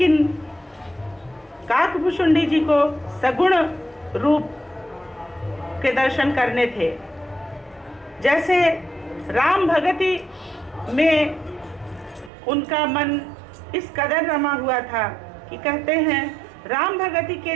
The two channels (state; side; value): drops out; left; at 12.3 s